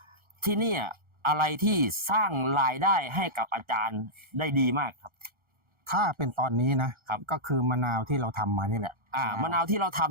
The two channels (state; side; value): late; left; 1.4 ms